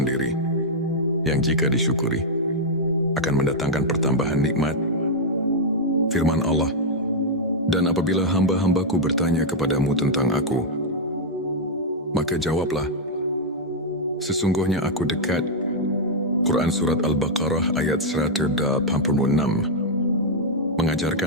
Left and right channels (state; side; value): normal; both; correlation -0.04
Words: yang jika disyukuri akan mendatangkan pertambahan nikmat. Firman Allah, dan apabila hamba-hambaku bertanya kepadamu tentang aku, maka jawablah, sesungguhnya aku dekat. Quran Surat Al-Baqarah ayat 186